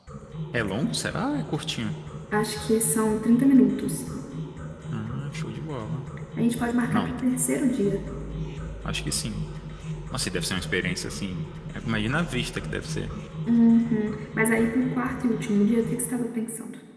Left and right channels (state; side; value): identical; both; correlation 1.00